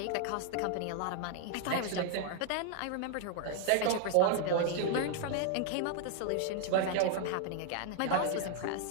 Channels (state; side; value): different; both; correlation 0.00